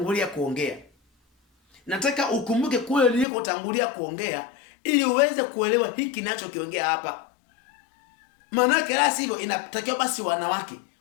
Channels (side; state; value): right; drops out; at 3.2 s